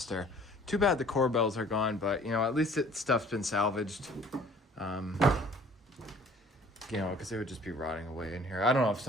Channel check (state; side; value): normal; both; correlation 0.53